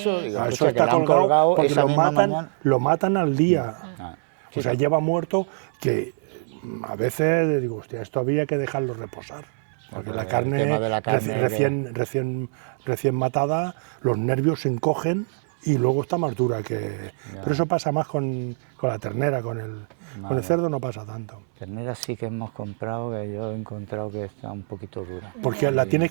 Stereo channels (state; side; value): silent; left; 62 dB below the other